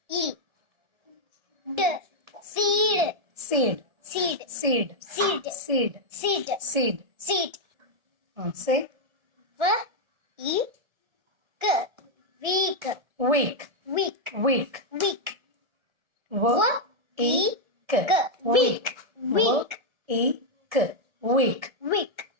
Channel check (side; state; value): left; late; 1.4 ms